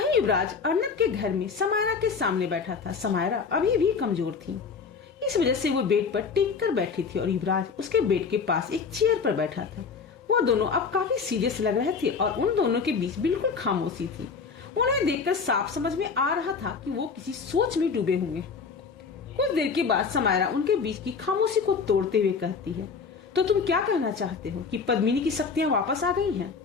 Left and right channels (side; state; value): right; quieter; 5.4 dB